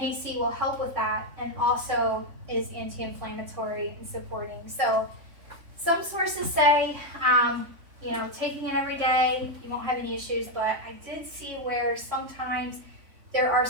will help with that, and also is anti-inflammatory and supporting. So some sources say, taking it every day, you won't have any issues, but I did see where sometimes there are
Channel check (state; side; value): late; left; 3.5 ms